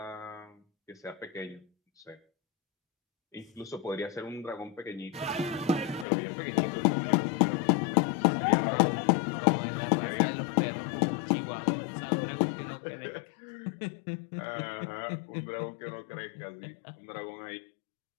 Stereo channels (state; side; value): drops out; right; at 6.1 s